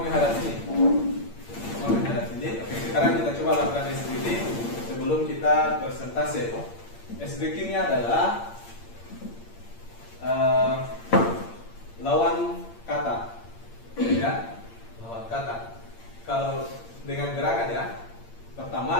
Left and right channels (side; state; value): right; late; 8.8 ms